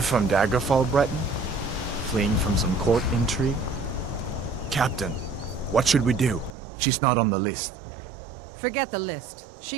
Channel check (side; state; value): left; drops out; at 6.6 s